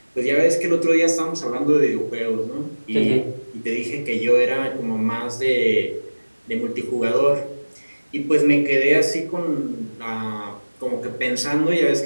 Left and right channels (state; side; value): inverted; both; correlation -1.00